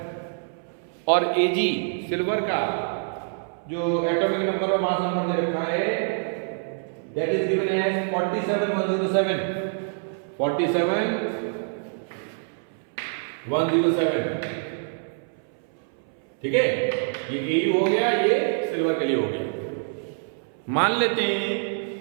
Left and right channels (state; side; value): silent; left; 61 dB below the other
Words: और AG सिल्वर का जो एटॉमिक नंबर और मास नंबर दे रखा है दैट इज गिवन एज 47 107 ठीक है। ये AU हो गया, ये सिल्वर के लिए हो गया। मान लेते हैं